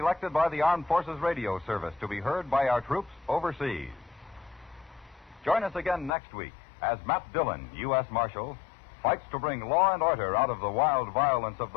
by the Armed Forces Radio Service to be heard by our troops overseas. Join us again next week as Matt Dillon, U.S. Marshal, fights to bring law and order out of the wild violence of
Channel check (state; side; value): drops out; right; at 6.1 s